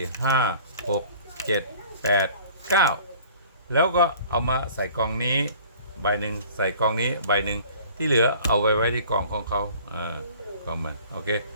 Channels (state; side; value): inverted; both; correlation -0.49